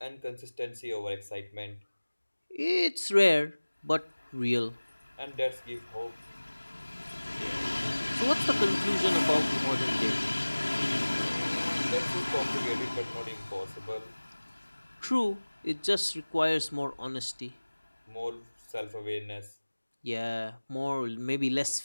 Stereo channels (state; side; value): inverted; both; correlation -1.00